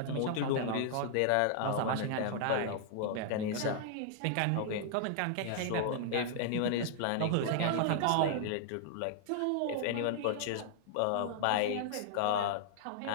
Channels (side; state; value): both; different; correlation -0.01